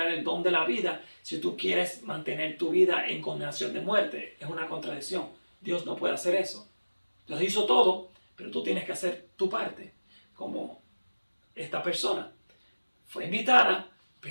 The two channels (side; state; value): both; inverted; correlation -1.00